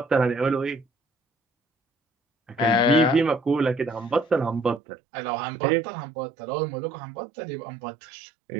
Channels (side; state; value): left; drops out; at 4.8 s